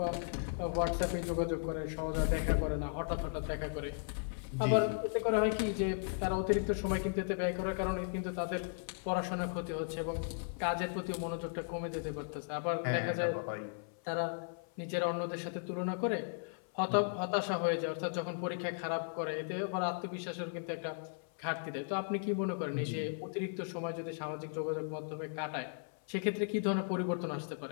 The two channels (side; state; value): right; silent; 54 dB below the other